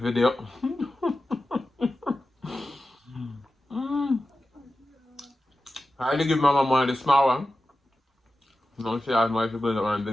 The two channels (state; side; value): normal; both; correlation 0.93